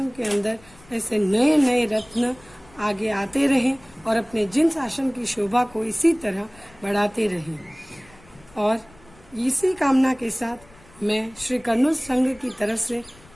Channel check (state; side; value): noise; left; rumble, 26 dB below the sound